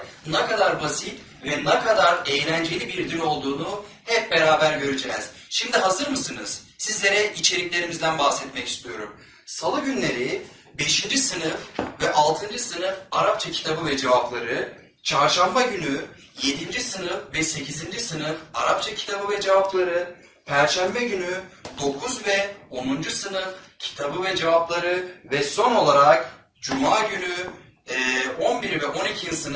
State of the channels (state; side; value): identical; both; correlation 1.00